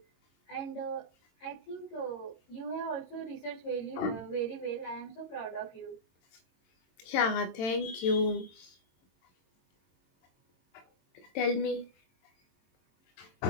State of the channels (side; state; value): right; late; 22 ms